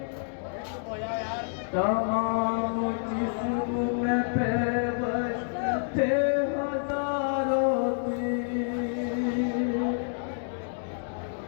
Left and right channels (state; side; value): silent; right; digital silence